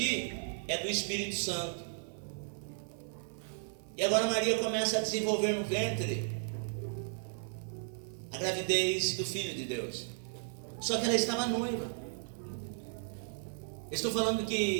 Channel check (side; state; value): left; silent; digital silence